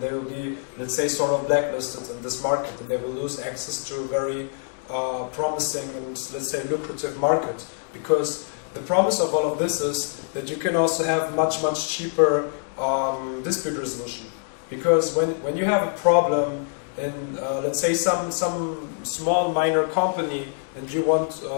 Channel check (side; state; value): right; silent; digital silence